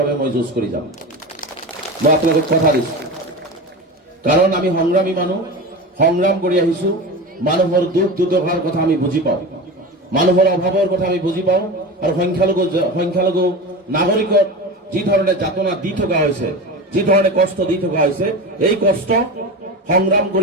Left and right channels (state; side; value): normal; both; correlation 0.27